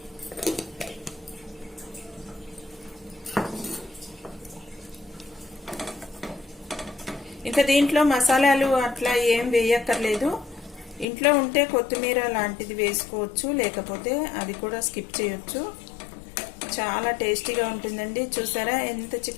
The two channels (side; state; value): right; drops out; at 11.1 s